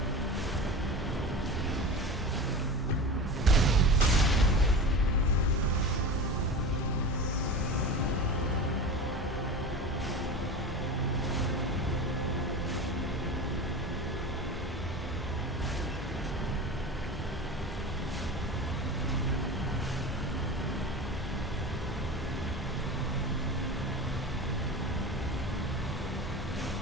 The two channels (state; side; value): normal; both; correlation 0.29